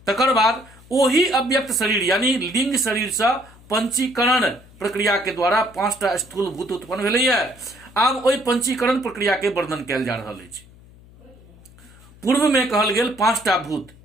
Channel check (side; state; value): left; noise; hum, 24 dB below the sound